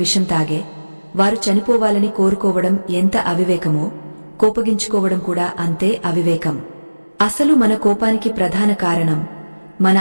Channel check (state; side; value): inverted; both; correlation -1.00